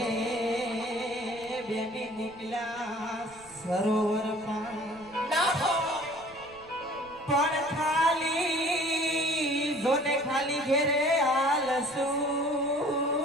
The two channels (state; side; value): noise; right; rumble, 25 dB below the sound